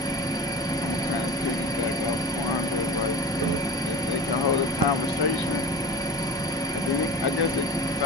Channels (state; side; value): normal; both; correlation 0.34